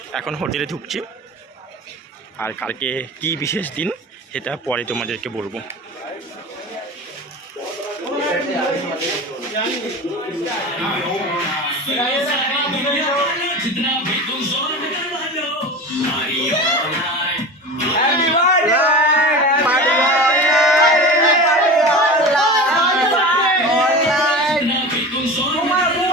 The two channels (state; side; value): normal; both; correlation 0.31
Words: এখন হোটেলে ঢুকছি, আর কালকে কি বিশেষ দিন সেটা পরে তোমাদেরকে বলবো।